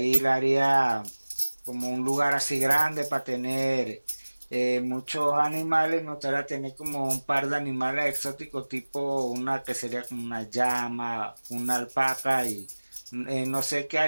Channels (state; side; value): inverted; both; correlation -1.00